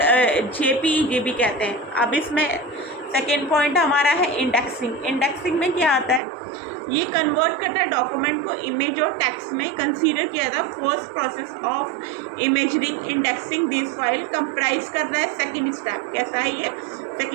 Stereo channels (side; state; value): left; drops out; at 6.2 s